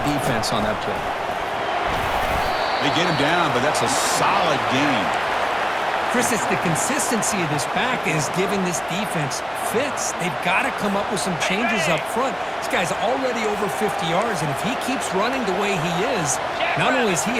defense on that play. They get him down, but that's a solid gain. Chris, it's the consistency of this back is giving this defense fits. They've got to come up with some changes up front. This guy's already over 50 yards, and if he keeps running the way he is, not only is he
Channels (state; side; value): identical; both; correlation 1.00